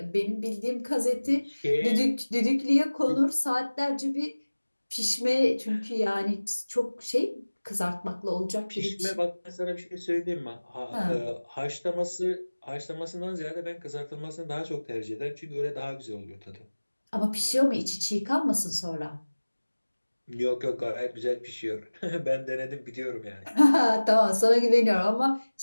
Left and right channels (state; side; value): inverted; both; correlation -1.00